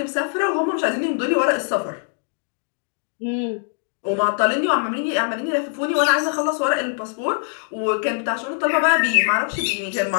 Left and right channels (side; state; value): right; silent; 60 dB below the other